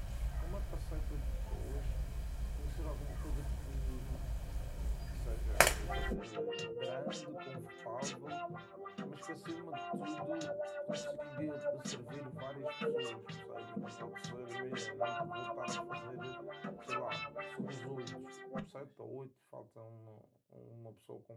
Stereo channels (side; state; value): both; identical; correlation 1.00